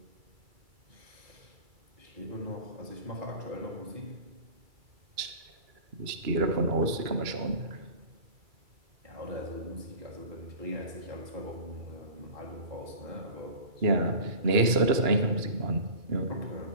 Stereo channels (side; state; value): left; late; 2.3 ms